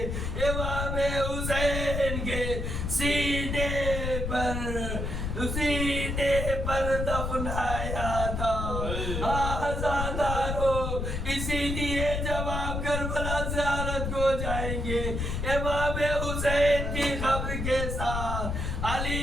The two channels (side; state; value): left; noise; rumble, 2 dB below the sound